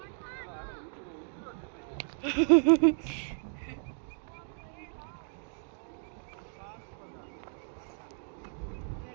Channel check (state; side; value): silent; left; 55 dB below the other